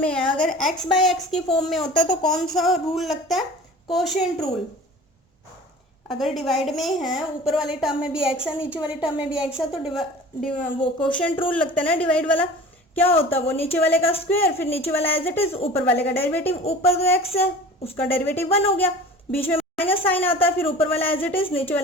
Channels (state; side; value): normal; both; correlation 0.41